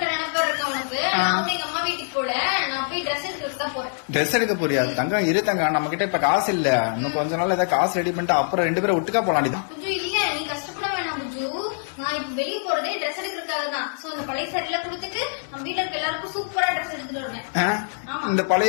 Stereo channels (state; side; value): silent; right; digital silence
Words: நினைப்பு இருக்க உனக்கு. நான் வந்து எங்க அம்மா வீட்டுக்கு போல, நான் போய் ட்ரெஸ் எடுக்கிறதுக்கு தான் போறேன். ட்ரெஸ் எடுக்க போறியா? தங்கம் இரு தங்கம், நம்ம கிட்ட இப்ப காசு இல்ல. இன்னும் கொஞ்ச நாள் ஏதாவது காசு ரெடி பண்ணிட்டு அப்புறம் 2 பேரும் ஒட்டுக்கா போலாண்டி. புஜு இல்ல, நீ கஷ்டப்பட வேணாம் புஜு. நான் இப்ப வெளியே போறதே ட்ரெஸ் எடுக்கிறதுக்காக தான். சோ இந்த பழைய சாரில கொடுத்துட்டு நம்ம வீட்டுல இருக்க எல்லாருக்கும் சூப்பரா ட்ரெஸ் எடுத்துட்டு வருவேன். இந்த